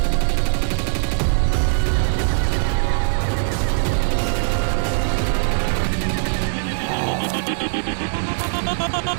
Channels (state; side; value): silent; left; 65 dB below the other